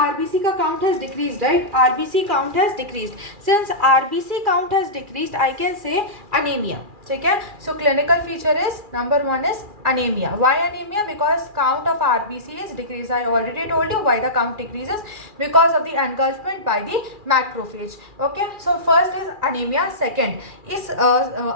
का count has decreased, right, RBC count has decreased, since RBC count has decreased I can say anaemia. ठीक है, सो clinical feature is number 1 is anemia. Why anemia? Because count of RBC is decreased. I already told you why the count decreases, because of the engulfment by the macrophage. Okay, so first is anemia. Second, इस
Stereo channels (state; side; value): late; left; 2.4 ms